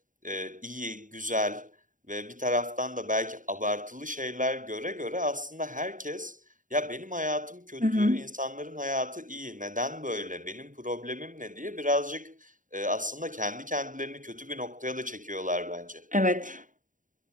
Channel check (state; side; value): late; left; 0.38 ms